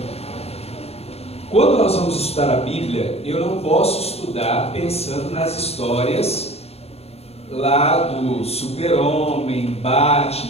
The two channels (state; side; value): late; right; 0.30 ms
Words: Quando nós vamos estudar a Bíblia, eu não posso estudar pensando nas histórias lá do Super-Homem,